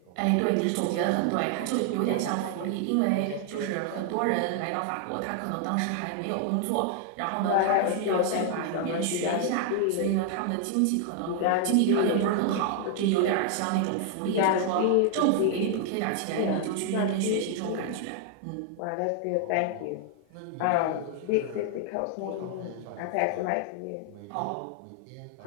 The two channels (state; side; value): different; both; correlation 0.00